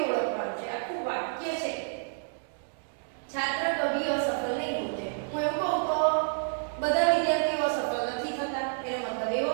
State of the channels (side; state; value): left; silent; digital silence